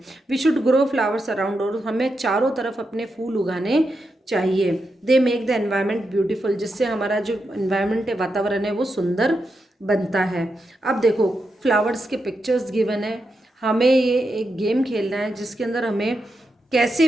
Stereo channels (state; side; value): normal; both; correlation 0.86